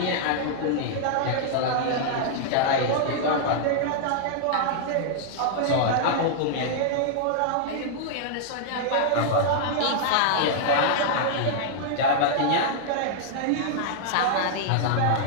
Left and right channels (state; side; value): different; both; correlation -0.01